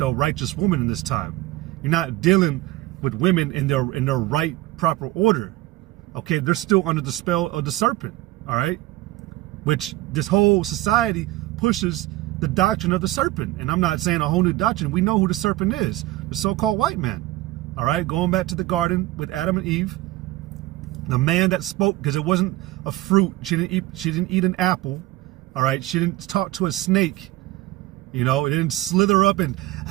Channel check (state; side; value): quieter; left; 17.7 dB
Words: righteous woman in this time. You're not dealing with women in their right, proper order. Okay. They're still under the spell of the serpent. All right. Which this whole society pushes the doctrine of the serpent. And I'm not saying a whole new doctrine. We know who the serpent is, the so-called white man. All right. Going back to the garden with Adam and Eve, the man that spoke, because it wasn't a fruit. She didn't eat an apple. All right. She didn't talk to a snake. You know, it didn't slither up and,